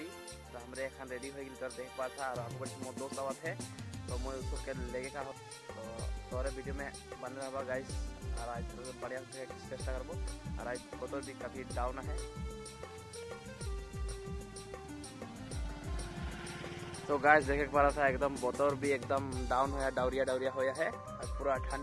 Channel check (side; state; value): both; identical; correlation 1.00